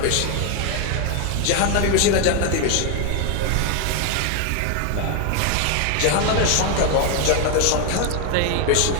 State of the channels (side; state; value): both; different; correlation 0.01